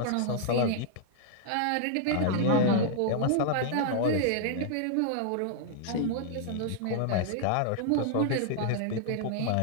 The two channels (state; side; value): different; both; correlation 0.00